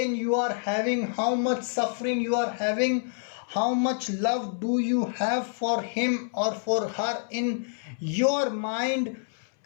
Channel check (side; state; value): right; silent; 60 dB below the other